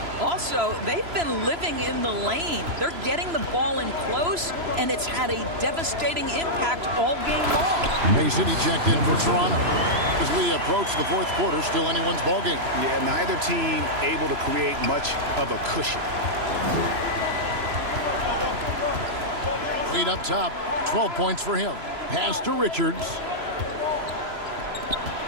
Also, they've been living in the lane. They're getting the ball in close, and it's had a devastating impact all game long. Mason, he checked in for Toronto. As we approach the fourth quarter, still anyone's ball game. Yeah, neither team able to create much of a cushion. Lead up top, 12 points for him. Pass to Richards.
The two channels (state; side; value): late; left; 3.0 ms